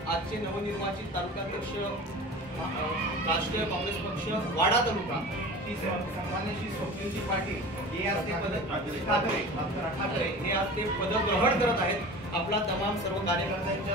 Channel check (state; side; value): normal; both; correlation 0.37